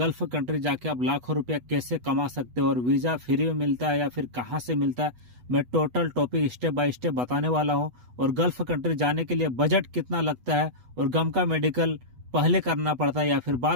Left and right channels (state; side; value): late; left; 8.1 ms